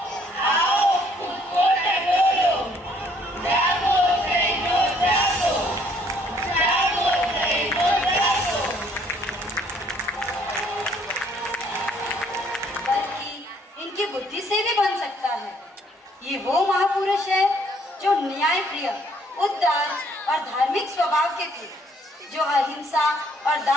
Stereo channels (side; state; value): both; normal; correlation 0.64